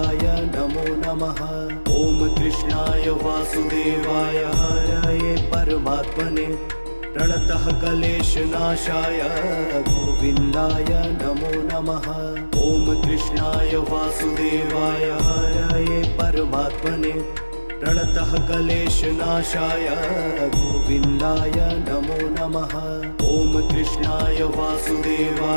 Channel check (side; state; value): both; inverted; correlation -1.00